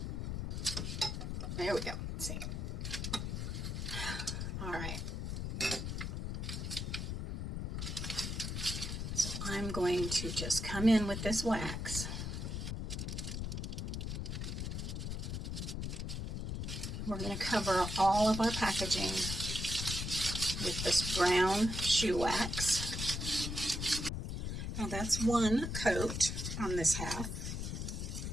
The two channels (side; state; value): left; noise; rumble, 3 dB below the sound